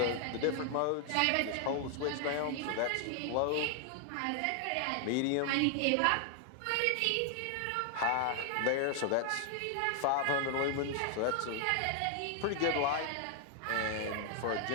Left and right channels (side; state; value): both; different; correlation 0.00